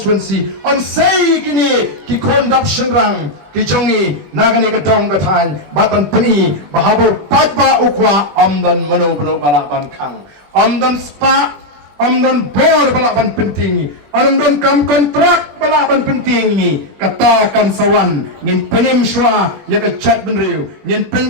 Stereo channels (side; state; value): left; late; 20 ms